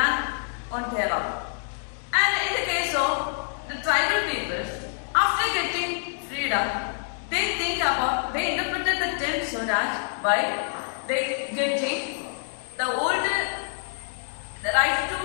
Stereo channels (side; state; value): right; silent; digital silence